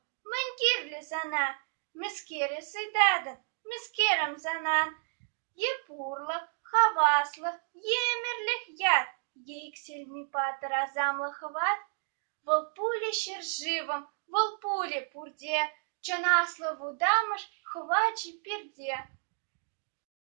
мынькирле зана, мискере сыйдадын, мискерем занан. Епурлык, хаваслык, емерлих яд, ейксельми патыр азамлы хват. Волпуле шершивым, волпуле пурде, чанаслы вудам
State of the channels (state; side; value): silent; left; 57 dB below the other